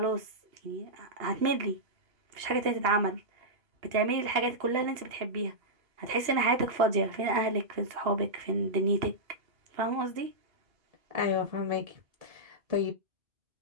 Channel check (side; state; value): left; late; 2.8 ms